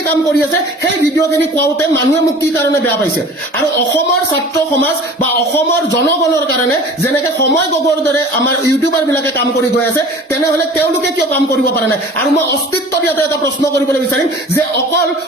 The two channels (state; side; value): normal; both; correlation 0.43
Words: কাম কৰি আছে সেই ভিডিঅ'খিনি কোৱাওঁতে মানুহে মোক কি কাৰণে বেয়া পাইছে আৰু অসমৰ ছাত্ৰ সমাজ বা অসমৰ জনগণৰ কাৰণে যেনেকে সময় গগৈৰ দৰে আমাৰ ইউটিউবাৰবিলাকে কাম কৰি গৈ আছে তেনেহ'লে তেওঁলোকে কিয় কাম কৰিব পৰা নাই আৰু মই অস্তিত্বত ইয়াতে এটা প্ৰশ্ন কৰিবলৈ বিচাৰিম যে অকল